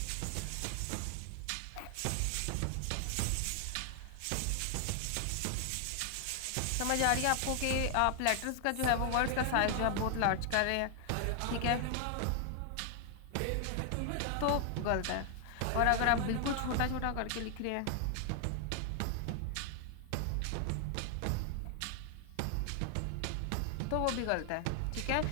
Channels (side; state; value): both; different; correlation 0.00